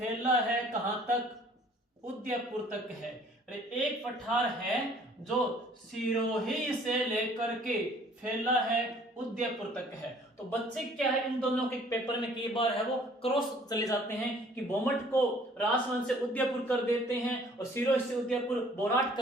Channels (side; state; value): both; normal; correlation 0.56